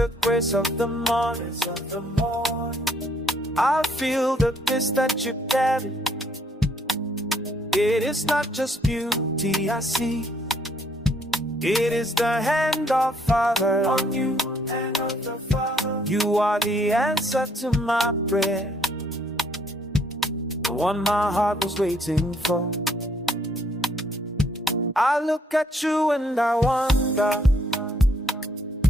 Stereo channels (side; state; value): both; normal; correlation 0.67